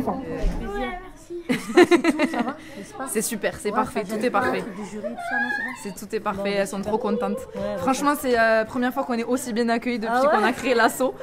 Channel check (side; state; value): both; identical; correlation 1.00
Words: C'est super, c'est parfait, tout est parfait. Tout est parfait, elles sont trop contentes. Franchement, c'est la première fois qu'on est aussi bien accueillis depuis qu'on a créé l'asso.